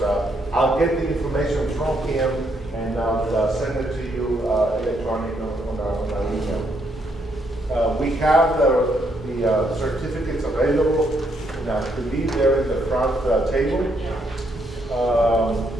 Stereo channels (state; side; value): normal; both; correlation 0.74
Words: I'll get the information from him, and I'll send it to you electronically on our email. We have the certificates available, and I believe they're in the front table.